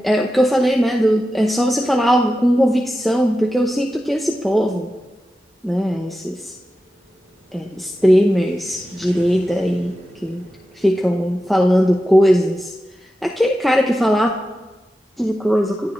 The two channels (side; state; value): both; normal; correlation 0.92